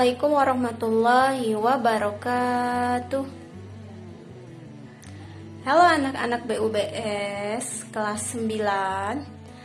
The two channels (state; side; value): identical; both; correlation 1.00